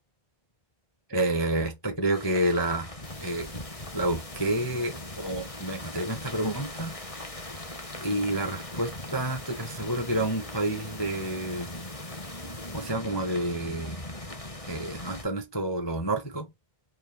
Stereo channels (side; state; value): right; late; 1.6 ms